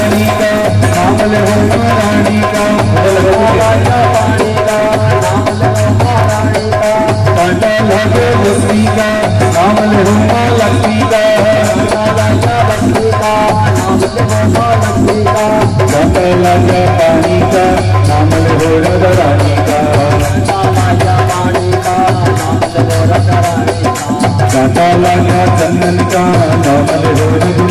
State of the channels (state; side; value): identical; both; correlation 1.00